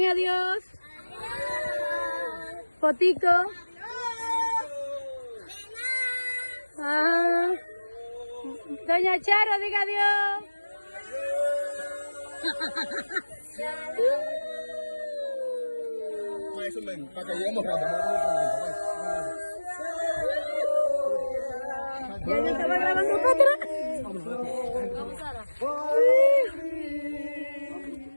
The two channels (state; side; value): inverted; both; correlation -1.00